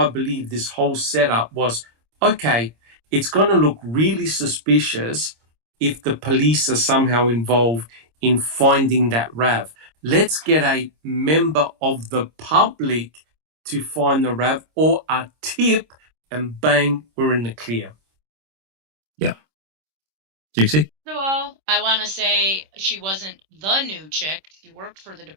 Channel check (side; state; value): left; late; 26 ms